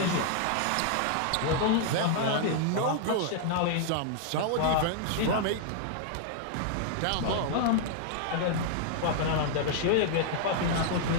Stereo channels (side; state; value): both; different; correlation -0.01